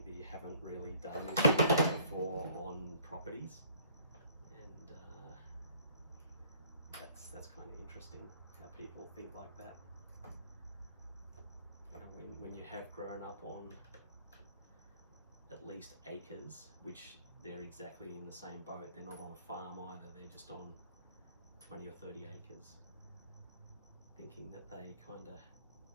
that you haven't really done this before on properties, and that's kind of interesting how people think like that. You know, when you have grown up on at least acres, which they're exactly in the same boat. They're not on a farm either, they're just on 20 or 30 acres, thinking that they kind of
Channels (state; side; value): inverted; both; correlation -0.57